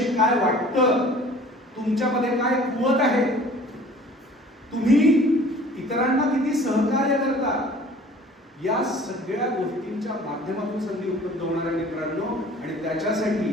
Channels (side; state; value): both; normal; correlation 0.48